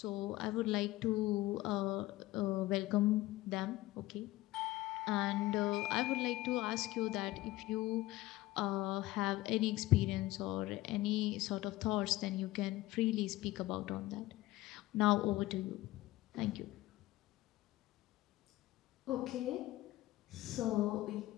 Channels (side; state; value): right; quieter; 17.6 dB